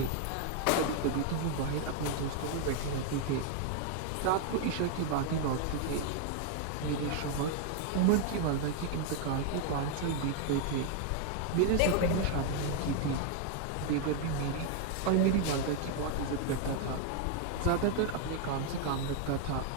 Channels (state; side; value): different; both; correlation 0.00